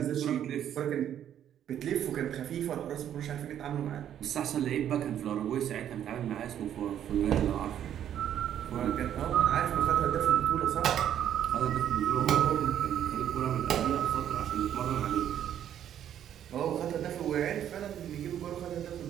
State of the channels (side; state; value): left; quieter; 10.2 dB